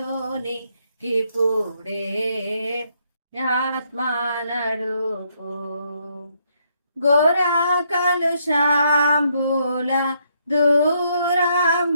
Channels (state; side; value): inverted; both; correlation -0.73